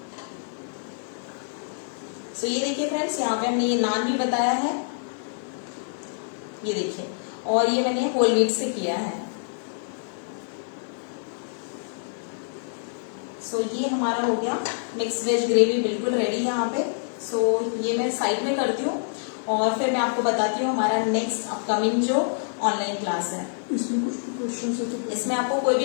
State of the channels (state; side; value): silent; right; digital silence